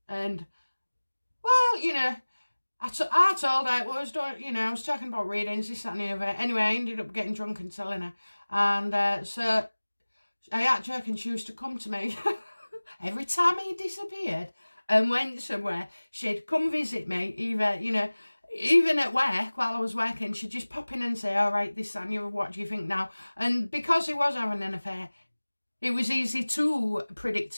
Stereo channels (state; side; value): inverted; both; correlation -1.00